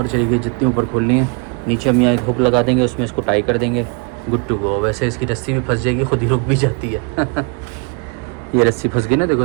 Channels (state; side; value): quieter; left; 34.2 dB